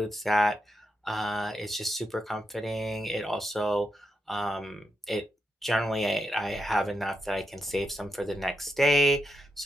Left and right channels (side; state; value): both; normal; correlation 0.84